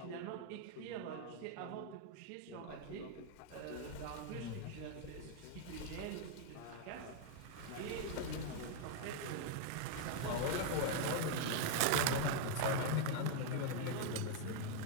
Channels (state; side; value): different; both; correlation 0.00